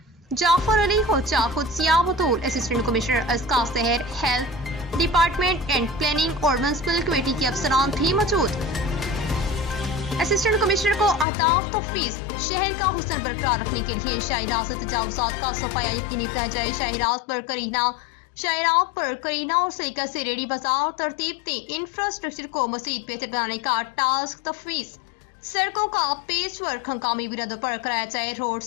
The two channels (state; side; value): drops out; right; at 11.2 s